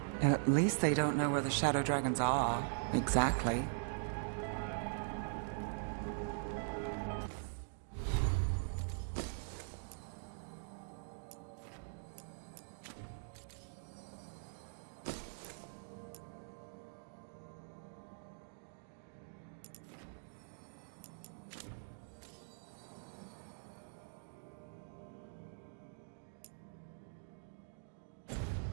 At least they don't know where the shadow dragons are, exactly.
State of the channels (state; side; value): silent; left; digital silence